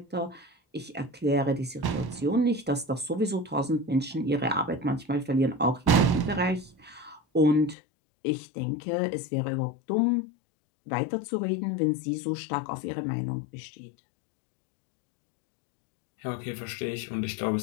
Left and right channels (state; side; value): drops out; right; at 7.8 s